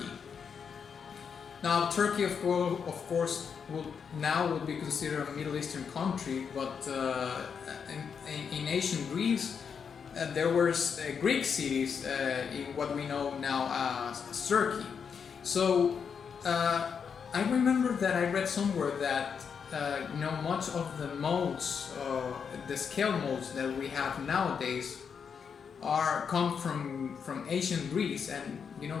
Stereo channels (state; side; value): quieter; right; 6.6 dB